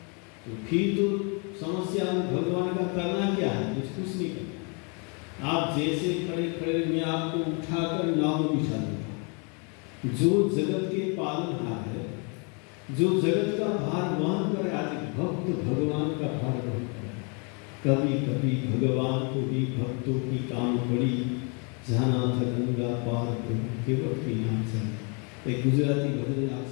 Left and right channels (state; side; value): quieter; right; 35.5 dB